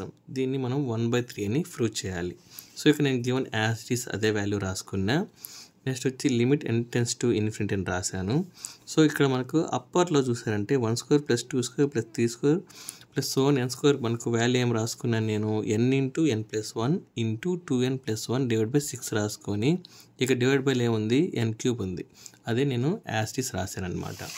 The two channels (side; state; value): both; identical; correlation 1.00